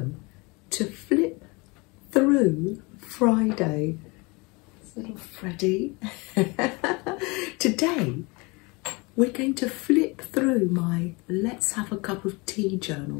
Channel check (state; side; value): quieter; right; 27.0 dB